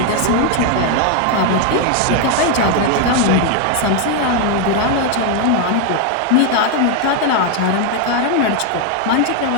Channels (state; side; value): different; both; correlation 0.01